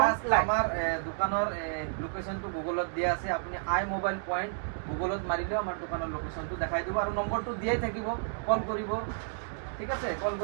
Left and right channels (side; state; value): left; silent; digital silence